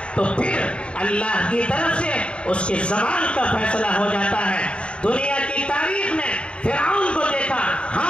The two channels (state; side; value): late; right; 0.056 ms